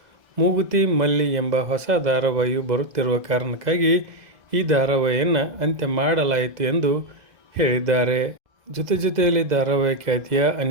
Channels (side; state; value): left; late; 2.0 ms